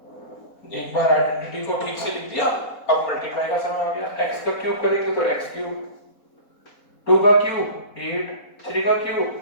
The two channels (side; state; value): right; late; 4.1 ms